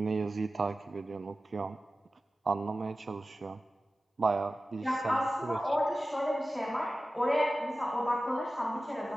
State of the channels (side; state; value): both; normal; correlation 0.95